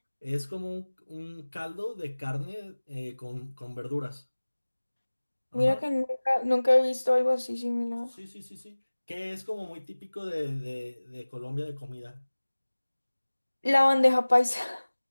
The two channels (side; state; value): both; inverted; correlation -1.00